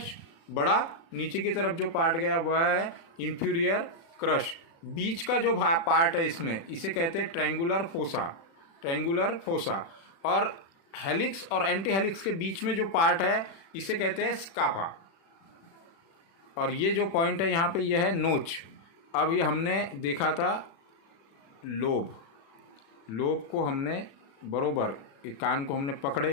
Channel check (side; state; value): right; late; 36 ms